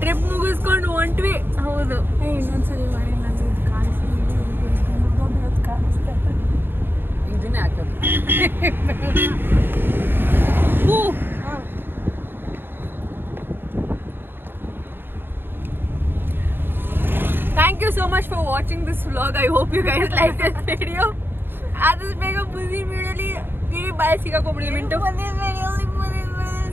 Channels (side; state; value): left; late; 0.10 ms